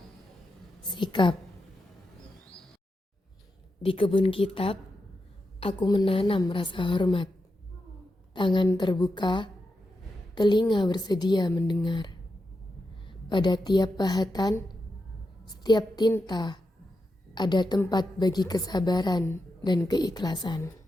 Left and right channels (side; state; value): both; normal; correlation 0.88